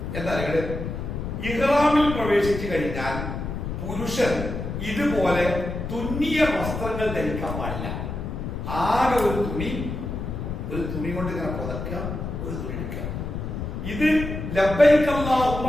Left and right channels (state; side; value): noise; left; rumble, 5 dB below the sound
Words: എന്താ പറയുക? ഇഹ്റാമിൽ പ്രവേശിച്ചു കഴിഞ്ഞാൽ പുരുഷൻ ഇതുപോലെ തുന്നിയ വസ്ത്രങ്ങൾ ധരിക്കാൻ പാടില്ല. ആകെ ഒരു തുണി കൊണ്ട് ഇങ്ങനെ പുതക്കുക, ഒരു തുണി എടുക്കുക. ഇത് ലബ്ബൈക അല്ലാഹുമ്മ